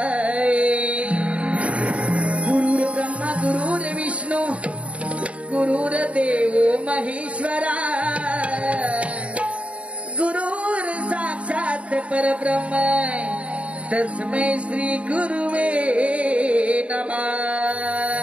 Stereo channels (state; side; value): late; left; 0.063 ms